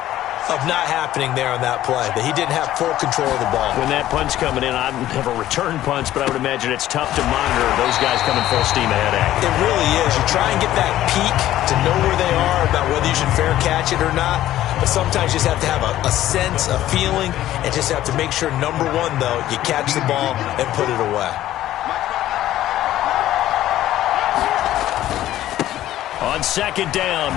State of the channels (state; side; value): quieter; right; 13.6 dB